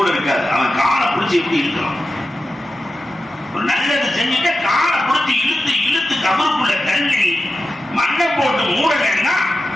இருக்காது. அவன் காலை பிடிச்சி எப்படி இருக்கிறான்? ஒரு நல்லது செஞ்சுட்டு காலை பிடிச்சி இழுத்து இழுத்து கபருக்குள்ள தள்ளி மண்ணை போட்டு மூடலன்னா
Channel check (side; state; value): both; normal; correlation 0.92